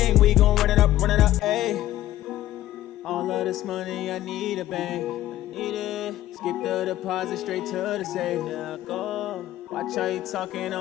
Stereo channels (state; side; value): quieter; right; 14.1 dB